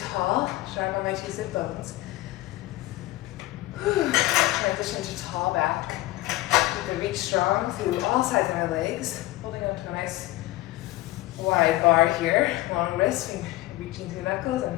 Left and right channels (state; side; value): quieter; right; 17.5 dB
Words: sharp on my 2 sit bones. Transition to tall back. You can reach strong through all sides of my legs, holding up to a nice wide bar here. Long wrists, reaching through knuckles.